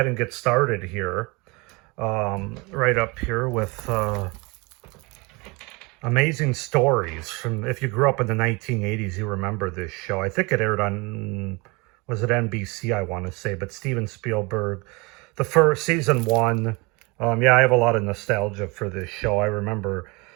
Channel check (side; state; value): left; quieter; 26.9 dB